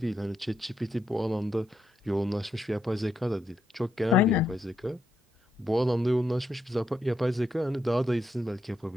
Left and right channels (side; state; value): both; normal; correlation 0.81